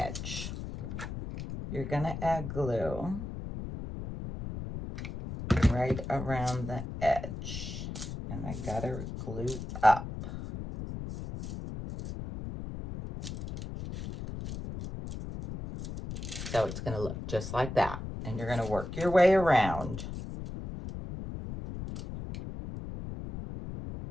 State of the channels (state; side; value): noise; left; rumble, 7 dB below the sound